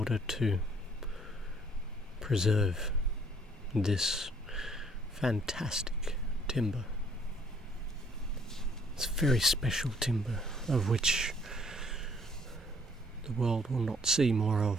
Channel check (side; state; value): both; normal; correlation 0.62